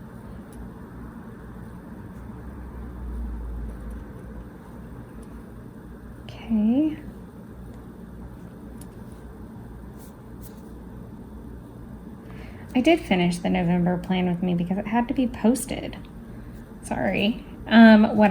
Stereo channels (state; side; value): identical; both; correlation 1.00